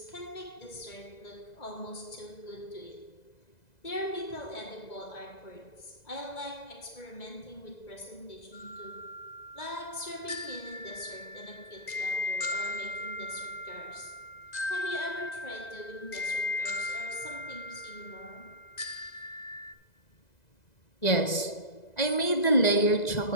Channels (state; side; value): late; right; 2.0 ms